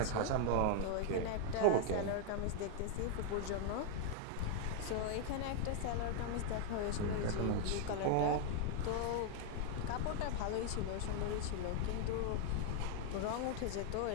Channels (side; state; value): both; different; correlation 0.00